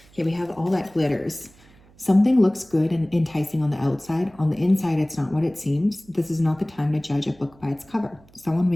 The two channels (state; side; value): noise; right; hum, 28 dB below the sound